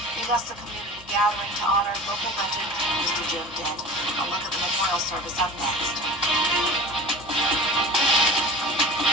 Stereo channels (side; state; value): both; normal; correlation 0.37